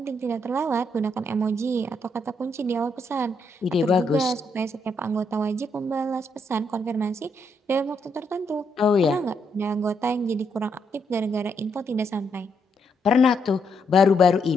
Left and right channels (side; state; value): both; normal; correlation 0.76